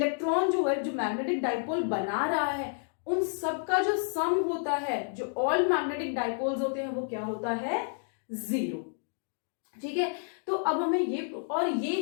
जो है, जो मैग्नेटिक डाइपोल बना रहा है, उन सबका जो सम होता है, जो ऑल मैग्नेटिक डाइपोल्स होते हैं, वो क्या होता है, 0, ठीक है। तो अब हमें ये, और ये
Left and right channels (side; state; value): right; silent; digital silence